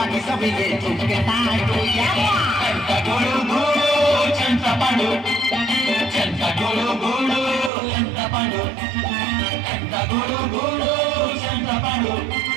बाकी सब ये तुमके तांडू చెంత గుడు గుడు చెంత పండు చెంత గుడు గుడు ఎంత పండు చెంత గుడు గుడు చెంత పండు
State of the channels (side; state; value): left; drops out; at 7.7 s